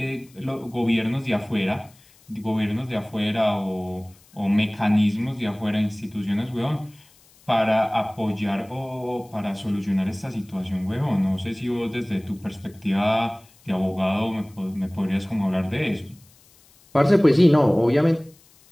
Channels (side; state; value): left; noise; hiss, 29 dB below the sound